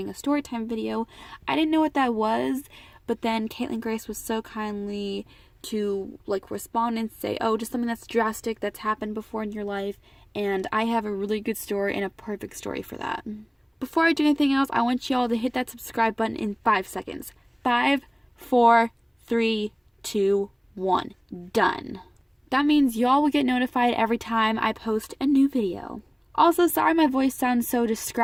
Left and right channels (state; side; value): identical; both; correlation 1.00